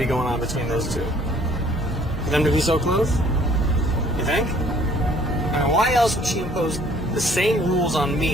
going on between those two. For them to be so close? You think? I mean, why else would she impose the same rules on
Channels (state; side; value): normal; both; correlation 0.58